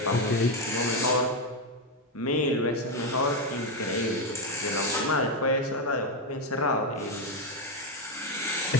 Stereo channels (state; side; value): normal; both; correlation 0.06